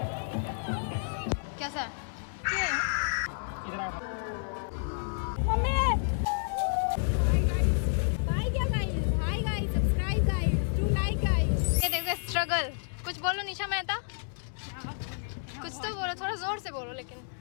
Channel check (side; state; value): right; silent; digital silence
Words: कैसा है? स्ट्रगल। कुछ बोलो निशा मेहता। कुछ तो बोलो, थोड़ा जोर से बोलो। लेकिन